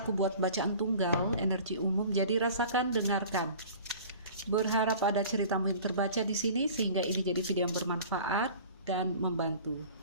aku buat bacaan tunggal, energi umum, jadi rasakan, dengarkan. Berharap ada ceritamu yang terbaca di sini sehingga ini jadi video yang bermanfaat dan membantu.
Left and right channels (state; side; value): inverted; both; correlation -0.44